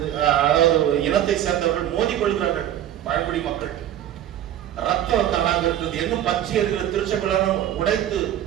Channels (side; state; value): left; quieter; 11.7 dB